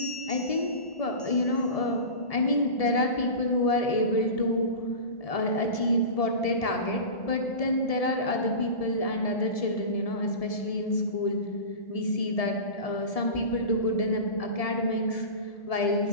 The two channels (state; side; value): late; right; 1.7 ms